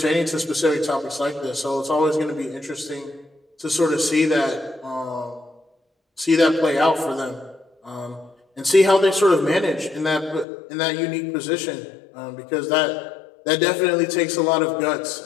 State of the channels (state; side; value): drops out; right; at 10.5 s